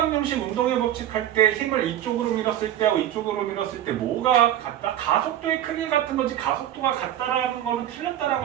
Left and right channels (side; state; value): left; quieter; 11.8 dB